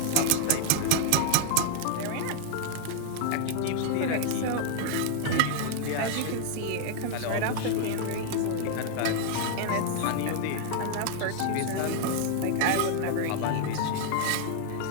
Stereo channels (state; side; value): different; both; correlation 0.00